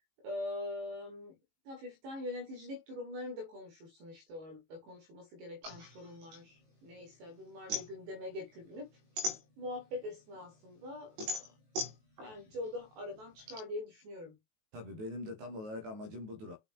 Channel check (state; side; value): late; left; 19 ms